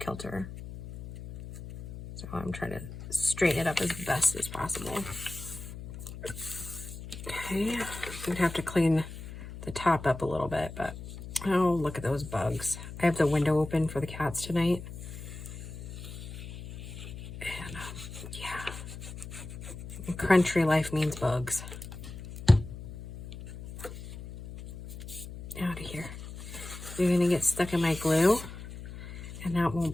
So I'm trying to straighten it up as best as possible. Okay, I'm gonna have to clean the top up a little bit, but oh, look at those bugs. I have the window open for the cats tonight. And yeah, country life means bugs. Out of here. You're gonna get stuck in my glue, and that won't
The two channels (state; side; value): noise; left; hum, 11 dB below the sound